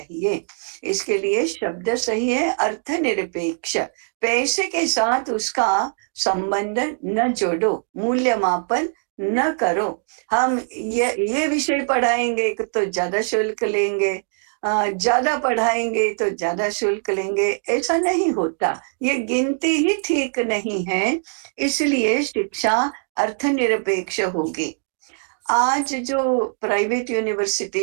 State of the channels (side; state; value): left; silent; 64 dB below the other